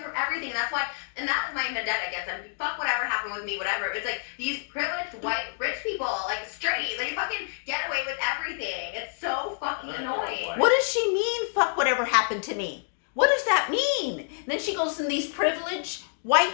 from everything. That's why, and that was my vendetta against them. Fuck whatever happened with me, whatever. It's like these privileged white rich people, like straight, like fucking get away with everything. It's so fucking annoying. What does she mean? Fuck whatever happened to me. What does that mean? And then she goes in these privileged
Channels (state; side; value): silent; right; digital silence